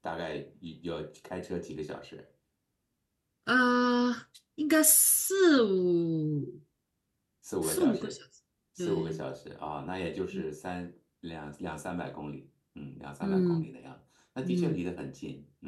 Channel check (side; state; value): both; identical; correlation 1.00